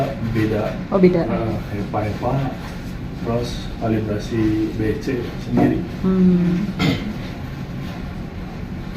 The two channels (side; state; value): both; identical; correlation 1.00